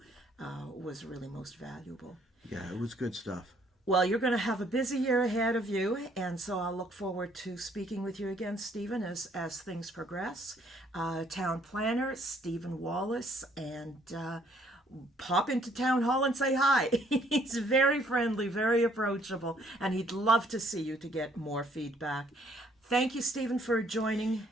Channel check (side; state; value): both; normal; correlation 0.64